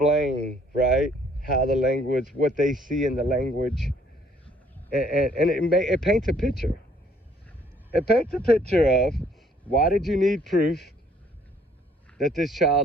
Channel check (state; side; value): normal; both; correlation 0.62